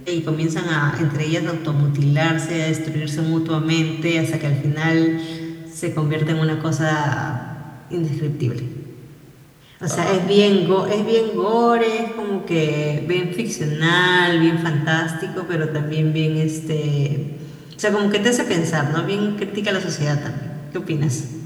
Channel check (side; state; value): both; identical; correlation 1.00